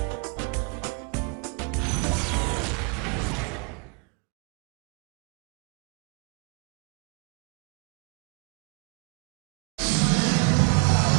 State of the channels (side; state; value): left; quieter; 32.9 dB